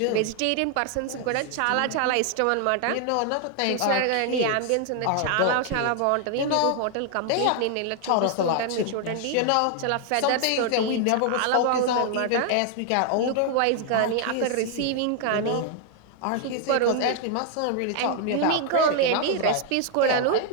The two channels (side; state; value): both; different; correlation 0.00